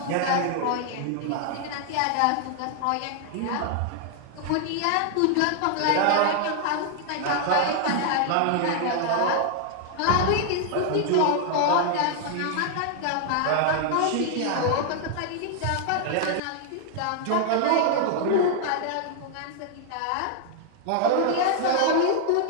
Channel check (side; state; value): both; different; correlation 0.00